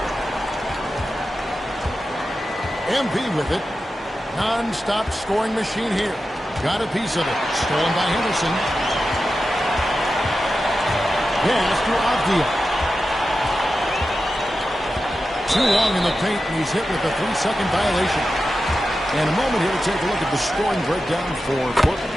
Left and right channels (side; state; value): both; normal; correlation 0.92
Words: MP with it. Non-stop scoring machine here. Got a piece of it. Stolen by Henderson. Yes, to Avdia. Too long in the paint, and he's hit with a 3-second violation. And a moment here to take a look at the scoring breakdown for Portland.